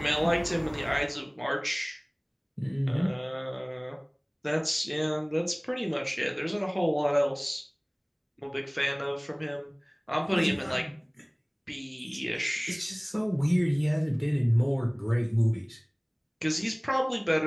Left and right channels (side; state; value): both; identical; correlation 1.00